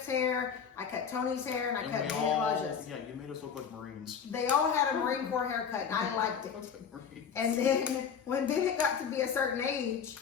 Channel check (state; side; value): quieter; right; 7.0 dB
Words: hair, I cut Tony's hair, and I cut Elijah's. Yeah, you made us look like Marines. They all had a Marine Corps haircut, and I liked it. And then when Bennett got to be a certain age,